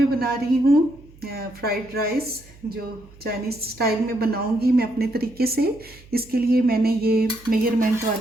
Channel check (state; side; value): noise; right; hum, 24 dB below the sound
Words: बना रही हूँ फ्राइड राइस, जो चाइनीज़ स्टाइल में बनाऊँगी मैं अपने तरीके से। इसके लिए मैंने ये मेजरमेंट